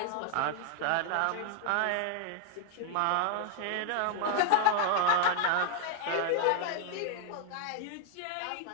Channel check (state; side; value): different; both; correlation 0.00